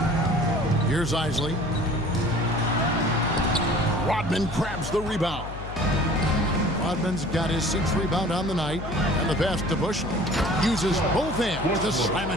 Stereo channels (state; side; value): noise; left; hum, 10 dB below the sound